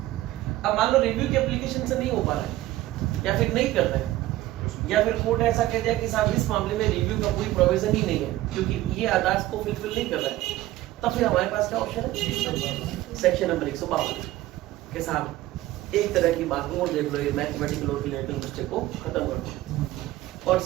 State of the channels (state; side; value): quieter; left; 16.0 dB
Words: अब मान लो रिव्यू की एप्लीकेशन से नहीं हो पा रहा है या फिर नहीं कर रहे हैं या फिर कोर्ट ऐसा कह दिया कि साहब इस मामले में रिव्यू का कोई प्रोविजन ही नहीं है क्योंकि ये आदेश को फुलफिल नहीं कर रहा है, तब फिर हमारे पास क्या ऑप्शन है? सेक्शन नंबर 152 के साहब एक तरह की बात और देख लो, ये मैथमेटिकल और रिलेटिव मिस्टेक को खत्म कर दो। और